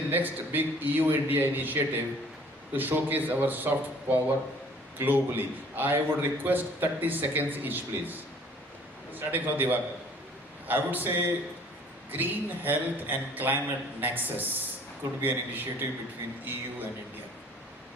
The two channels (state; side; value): normal; both; correlation 0.54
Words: next big EU-India initiative to showcase our soft power globally? I would request 30 seconds each, please. Starting from Diva. I would say Green Health and Climate Nexus could be an initiative between EU and India.